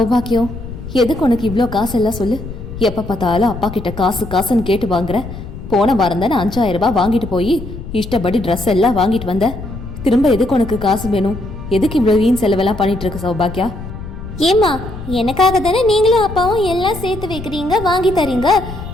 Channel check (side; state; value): left; noise; rumble, 11 dB below the sound